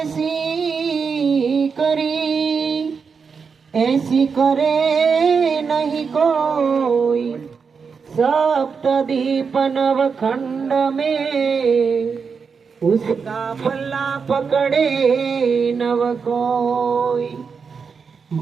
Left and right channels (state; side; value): quieter; left; 5.6 dB